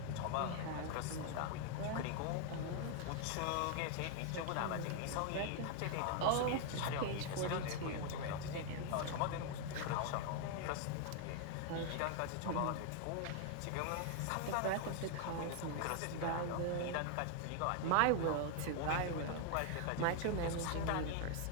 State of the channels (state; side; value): different; both; correlation 0.00